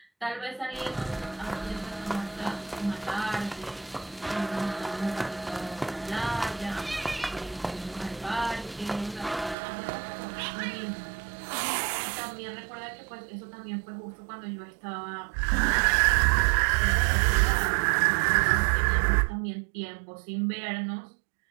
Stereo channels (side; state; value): left; drops out; at 9.6 s